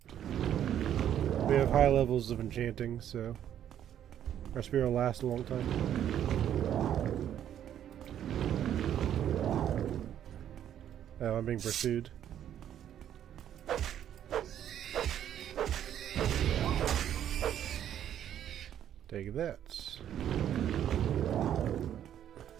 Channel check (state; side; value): quieter; left; 10.4 dB